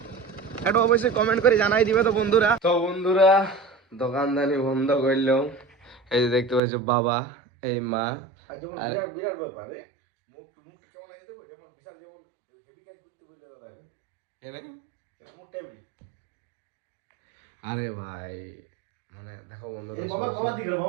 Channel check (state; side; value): drops out; left; at 6.6 s